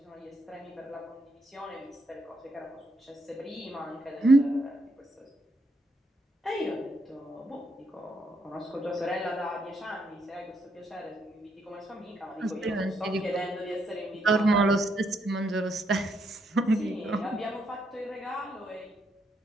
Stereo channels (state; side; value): normal; both; correlation 0.76